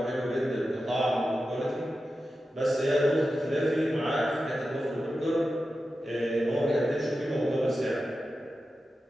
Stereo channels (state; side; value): normal; both; correlation 0.92